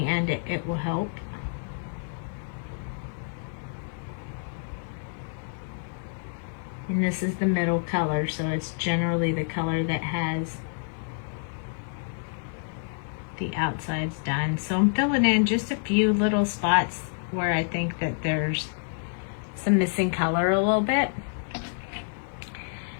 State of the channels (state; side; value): silent; right; digital silence